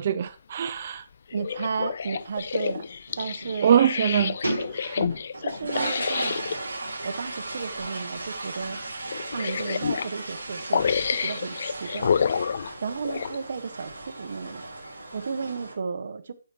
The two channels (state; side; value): inverted; both; correlation -0.74